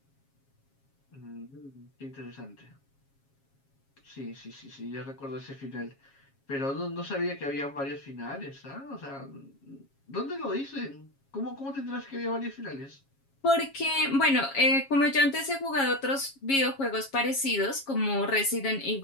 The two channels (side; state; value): right; late; 7.3 ms